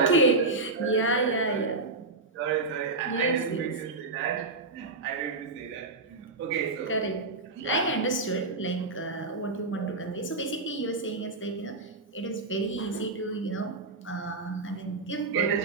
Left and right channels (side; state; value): left; quieter; 3.4 dB